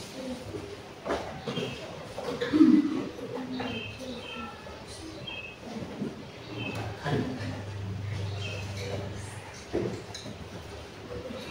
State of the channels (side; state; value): both; identical; correlation 1.00